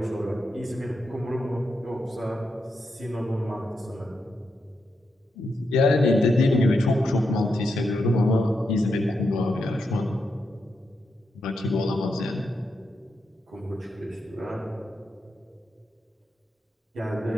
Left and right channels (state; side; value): normal; both; correlation 0.84